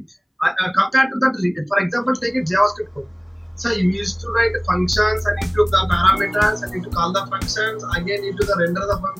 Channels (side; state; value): both; identical; correlation 1.00